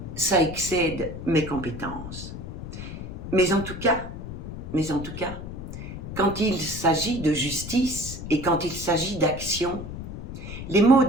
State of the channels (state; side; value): noise; left; rumble, 9 dB below the sound